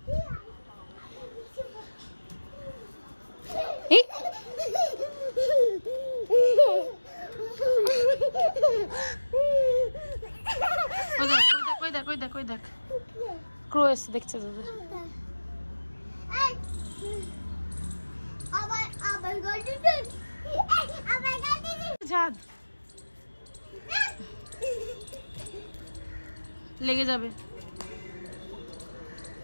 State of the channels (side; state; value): both; inverted; correlation -1.00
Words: ক্রো এসে দেখছে তোদের। ছাদ লেগে যাবে।